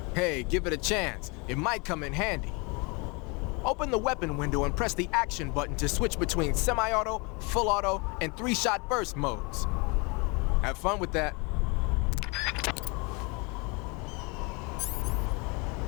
Hey, give it a chance. It might come in handy. Open the weapon window and press the action button to switch between semi-auto, full auto, and 3-shot burst modes. Have fun with that.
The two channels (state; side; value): quieter; right; 29.8 dB